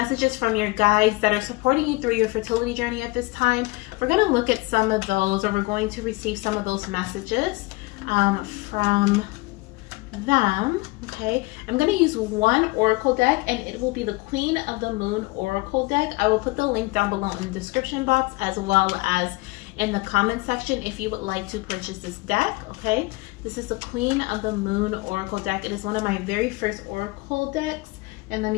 from your guides that are supporting you through your fertility journey at this time. We're going to look at some of those, or we're going to receive some of those messages from them, okay? I'm going to use one oracle deck, and it will be the Queen of the Moon oracle deck. I will put the link down below in the description box, as well as in the comment section if you would like to purchase this deck, okay? This is the Queen of the Moon oracle deck. It is one of my very first oracle decks. And let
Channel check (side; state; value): right; quieter; 23.5 dB